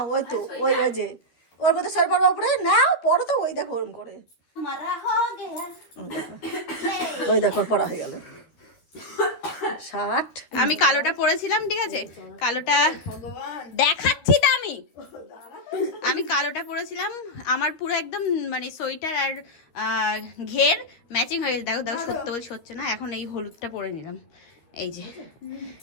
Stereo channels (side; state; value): right; late; 12 ms